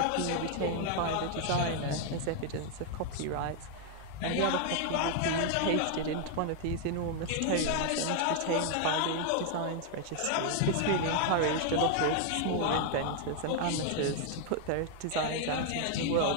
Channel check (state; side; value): different; both; correlation 0.00